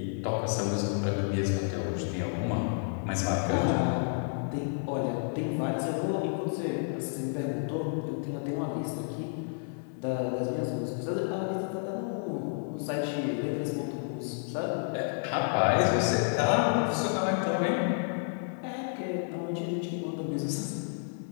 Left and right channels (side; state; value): right; silent; digital silence